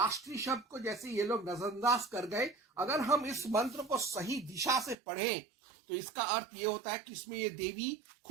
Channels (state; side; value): drops out; left; at 5.0 s